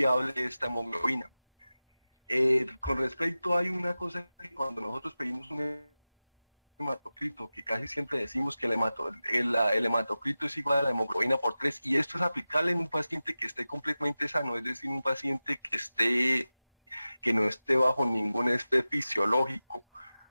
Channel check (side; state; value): both; inverted; correlation -0.95